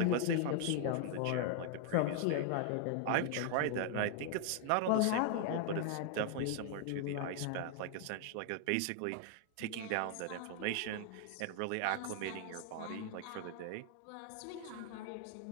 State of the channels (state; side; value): different; both; correlation 0.00